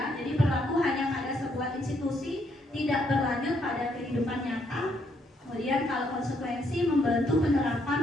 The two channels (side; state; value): both; normal; correlation 0.73